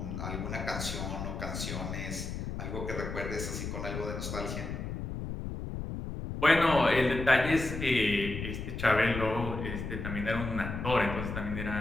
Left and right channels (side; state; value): left; noise; rumble, 5 dB below the sound